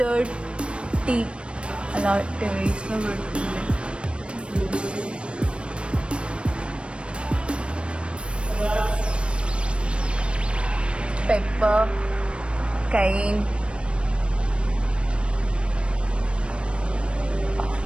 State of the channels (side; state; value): left; late; 0.058 ms